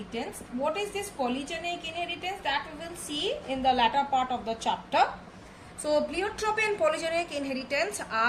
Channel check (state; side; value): identical; both; correlation 1.00